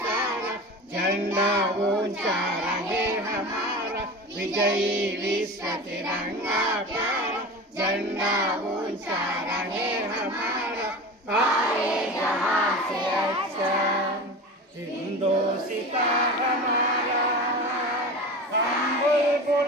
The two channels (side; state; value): both; normal; correlation 0.31